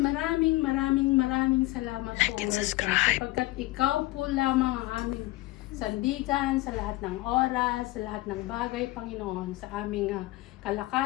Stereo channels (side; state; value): right; quieter; 19.1 dB